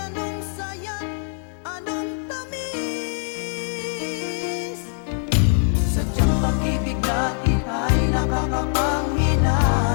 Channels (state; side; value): silent; right; 63 dB below the other